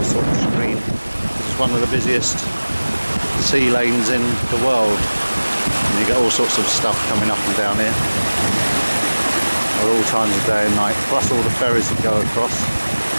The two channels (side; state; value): both; inverted; correlation -1.00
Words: sort of screen. It's one of the busiest sea lanes in the world, and you get all sorts of stuff coming up and down here at all times of day and night, plus all the ferries that go across